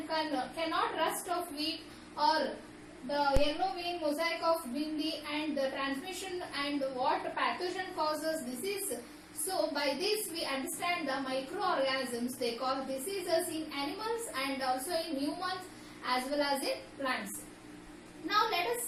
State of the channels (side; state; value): both; identical; correlation 1.00